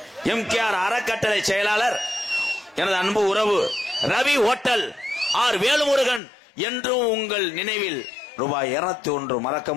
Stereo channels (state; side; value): drops out; right; at 6.2 s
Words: எம்கேஆர் அறக்கட்டளை செயலாளர் எனது அன்பு உறவு ரவி ஹோட்டல் ஆர் வேலுமுருகன் என்றும் உங்கள் நினைவில் ரூபாய் 201 மறக்க